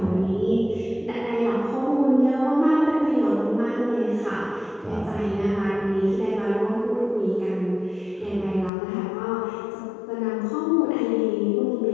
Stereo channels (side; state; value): right; drops out; at 8.7 s